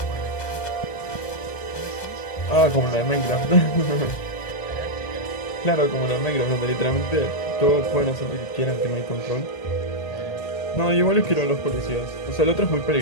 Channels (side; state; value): right; late; 2.0 ms